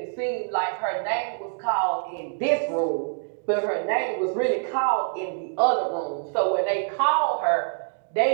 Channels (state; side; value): silent; left; digital silence